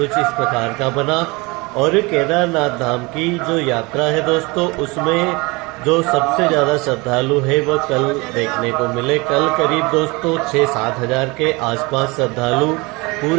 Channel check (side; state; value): left; quieter; 25.4 dB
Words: इस प्रकार का बना। और केदारनाथ धाम की जो यात्रा है दोस्तों उसमें जो सबसे ज्यादा श्रद्धालु है वो कल देखने को मिले। कल करीब दोस्तों 6-7 हजार के आसपास श्रद्धालु